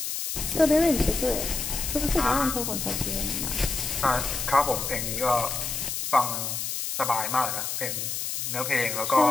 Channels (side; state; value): left; noise; hiss, 3 dB below the sound